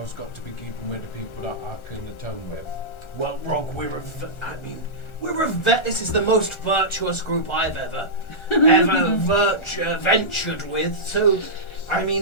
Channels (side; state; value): right; late; 1.4 ms